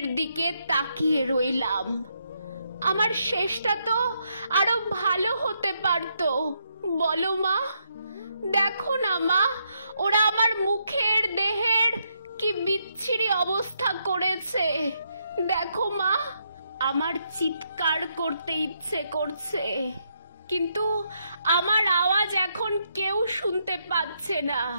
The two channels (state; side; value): inverted; both; correlation -0.78